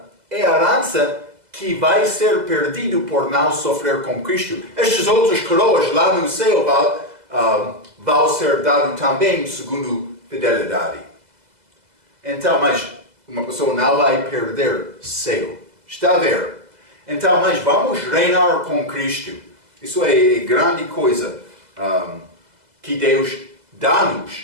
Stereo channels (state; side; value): late; left; 2.0 ms